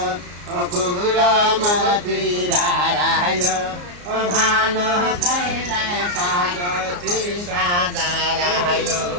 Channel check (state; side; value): late; left; 34 ms